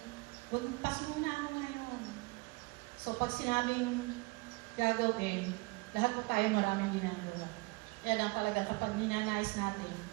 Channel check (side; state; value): left; quieter; 26.1 dB